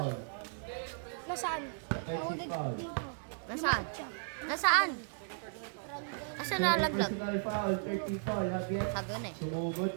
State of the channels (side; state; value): left; silent; digital silence